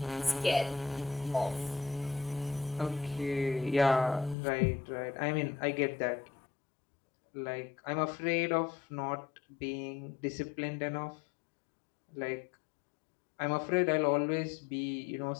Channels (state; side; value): drops out; right; at 4.4 s